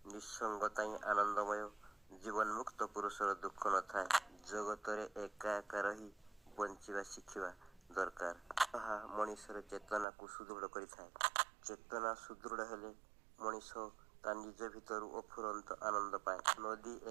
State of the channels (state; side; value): drops out; left; at 10.1 s